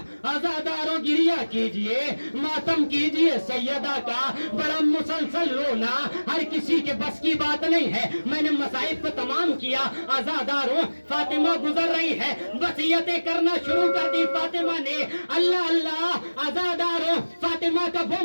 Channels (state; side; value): inverted; both; correlation -1.00